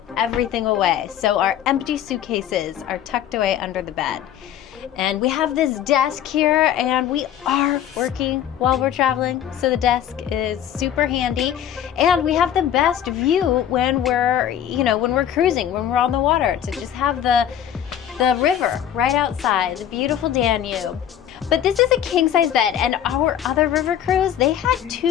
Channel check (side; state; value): right; quieter; 10.2 dB